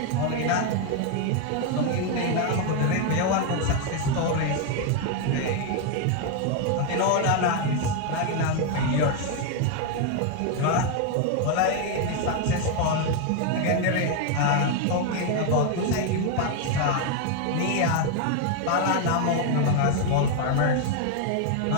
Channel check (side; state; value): both; different; correlation 0.01